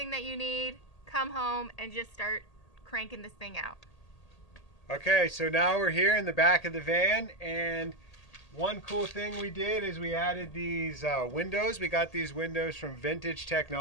that you need, come home, and just start cranking this thing out. Okay, so now we're here in the back of the van, and one cool thing we did is we added these windows. We got these windows from Vintage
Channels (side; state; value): right; late; 1.8 ms